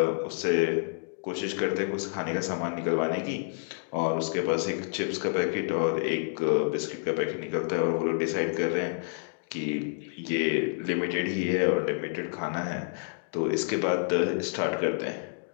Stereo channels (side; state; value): right; silent; digital silence